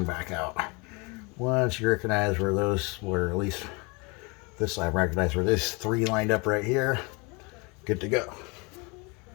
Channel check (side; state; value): right; quieter; 29.2 dB